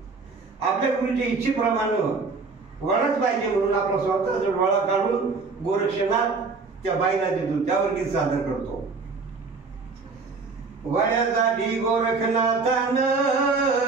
इच्छेप्रमाणे वडाच पाहिजे म्हणून आपला स्वतःचा डोळा काढून गोरक्षनाथ त्या बाईला देतो. त्यावर गीत सादर करतो. वड्यासाठी गोरखनाथानं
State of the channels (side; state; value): left; quieter; 4.3 dB